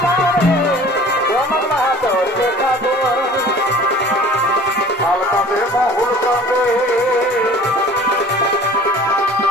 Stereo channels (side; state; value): both; normal; correlation 0.46